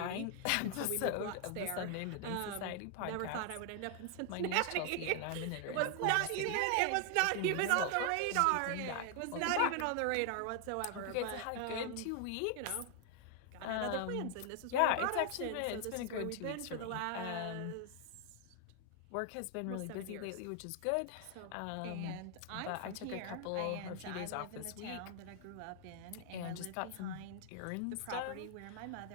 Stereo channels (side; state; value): both; different; correlation 0.00